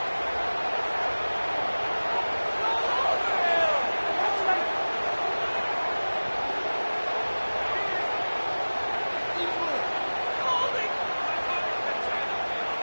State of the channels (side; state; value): both; inverted; correlation -1.00